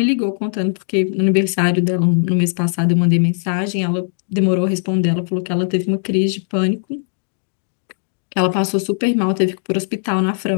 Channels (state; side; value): silent; right; digital silence